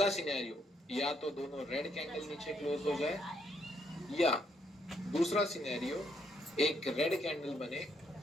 सिनेरियो, या तो दोनों रेड कैंडल नीचे क्लोज हो जाए, या दूसरा सिनेरियो एक रेड कैंडल बने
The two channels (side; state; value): both; normal; correlation 0.73